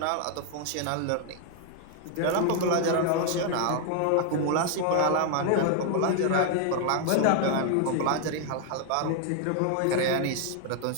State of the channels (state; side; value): different; both; correlation 0.00